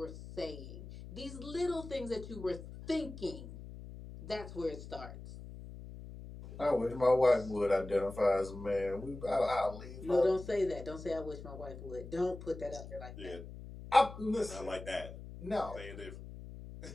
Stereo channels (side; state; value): left; noise; hum, 12 dB below the sound